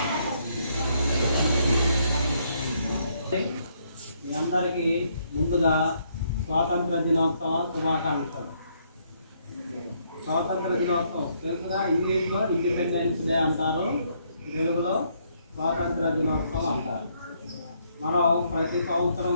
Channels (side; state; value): both; inverted; correlation -0.71